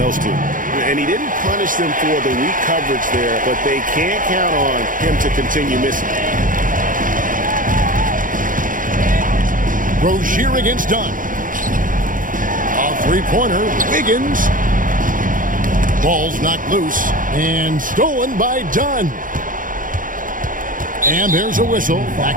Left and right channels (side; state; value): left; late; 0.39 ms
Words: two. And he didn't punish them for the weak coverage there, but they can't count on him to continue missing. Rozier against Dunn. A three-pointer. Wiggins. Ball's knocked loose and stolen by Dunn. And there's a whistle.